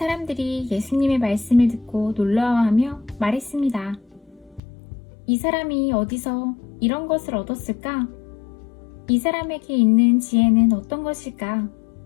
예수님의 말씀을 듣고 놀라워하며 말했습니다. 이 사람이 어디서 이런 것을 얻었을까? 이 사람에게 있는 지혜는 어떤 것일까?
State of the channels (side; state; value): right; drops out; at 4.6 s